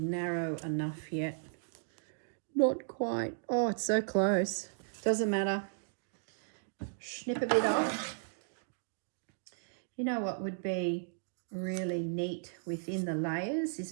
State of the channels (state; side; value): silent; left; digital silence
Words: enough yet? Not quite. Oh, it's so close. Doesn't matter. Snip a bit off. You know what would be really neat within the layers